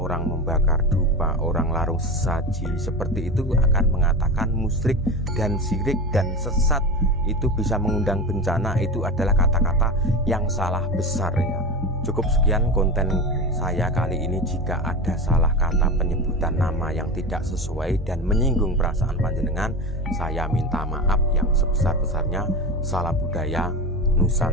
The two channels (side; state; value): both; normal; correlation 0.24